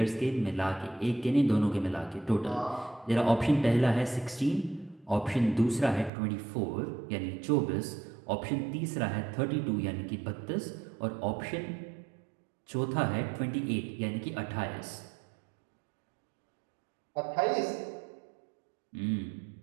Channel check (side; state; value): left; drops out; at 6.1 s